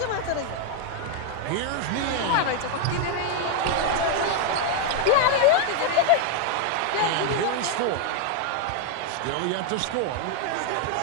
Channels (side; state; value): both; different; correlation 0.01